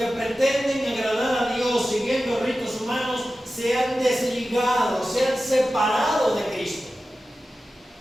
pretenden agradar a Dios siguiendo ritos humanos, se han desligado, se han separado de Cristo.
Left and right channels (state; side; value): normal; both; correlation 0.94